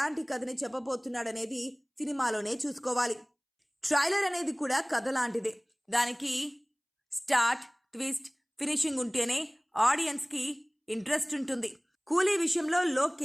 కథని చెప్పబోతున్నాడనేది సినిమాలోనే చూసుకోవాలి. ట్రైలర్ అనేది కూడా కథ లాంటిదే. దానికి స్టార్ట్, ట్విస్ట్, ఫినిషింగ్ ఉంటేనే ఆడియన్స్ కి ఇంట్రెస్ట్ ఉంటుంది. కూలీ విషయంలో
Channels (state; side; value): identical; both; correlation 1.00